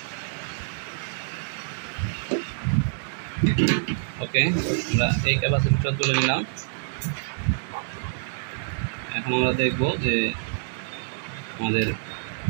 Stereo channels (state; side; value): silent; left; digital silence